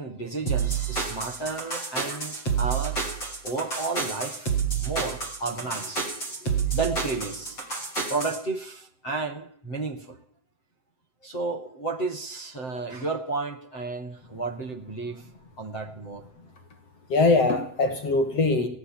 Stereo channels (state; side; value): late; right; 7.8 ms